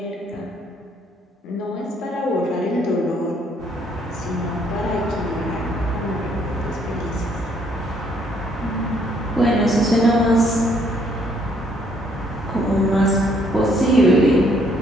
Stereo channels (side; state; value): both; normal; correlation 0.67